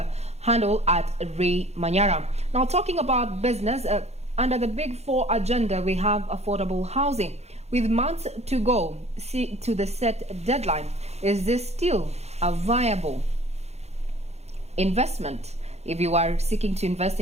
handle at Ray Manyara. Now, talking about business, under the Big Four agenda, we have affordable housing. With months to go to the set deadline, is this still a viable investment? If you are seeking to invest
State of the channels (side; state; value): left; late; 0.31 ms